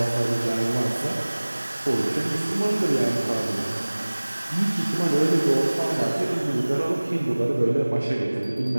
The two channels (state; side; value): inverted; both; correlation -1.00